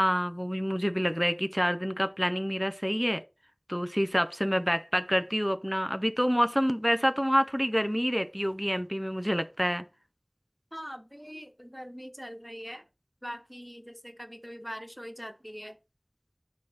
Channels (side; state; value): both; identical; correlation 1.00